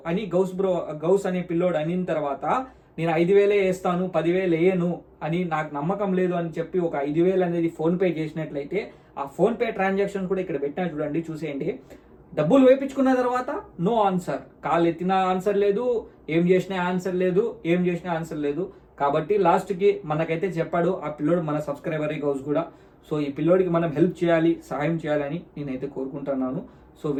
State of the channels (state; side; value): identical; both; correlation 1.00